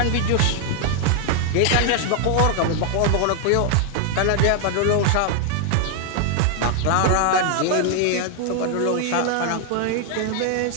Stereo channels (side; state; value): both; different; correlation 0.00